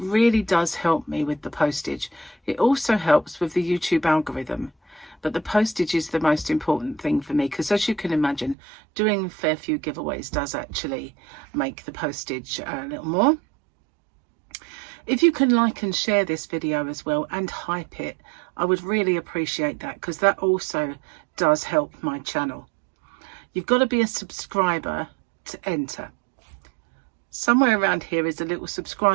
does help me with the postage. It also helps with the YouTube algorithm. But the postage is the most important thing for me, because as you can imagine, doing a fair few giveaways does actually make the postage a little more. If you can like and share this video as well and hype it, I would really appreciate that, because that also does help my channel. You've got to be a subscriber to enter. Somewhere around here is a little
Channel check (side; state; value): left; drops out; at 8.6 s